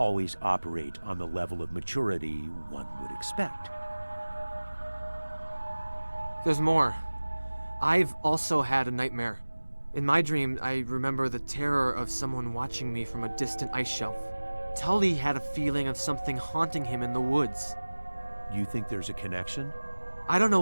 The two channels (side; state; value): both; inverted; correlation -1.00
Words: operate on the level of maturity one would expect. There's more. I've also had a nightmare. In my dream, I remember the terror of someone watching me from a distant ice shelf. Tully had a feeling of something haunting him in the woods. You think there's a connection? I don't know